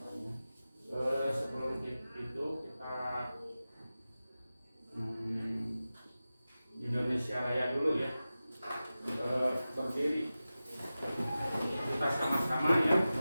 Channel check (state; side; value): inverted; both; correlation -0.95